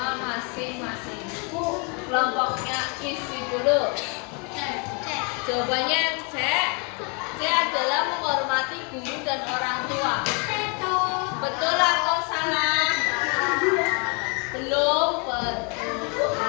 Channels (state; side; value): quieter; right; 34.2 dB